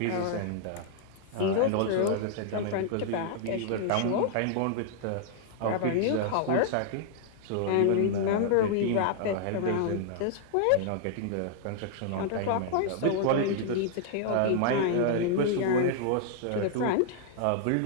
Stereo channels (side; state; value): both; different; correlation -0.01